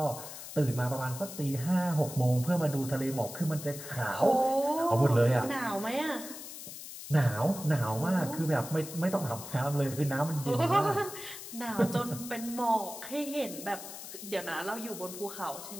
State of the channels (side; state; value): left; noise; hiss, 11 dB below the sound